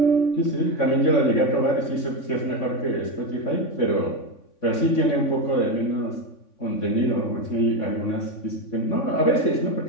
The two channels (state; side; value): late; right; 3.6 ms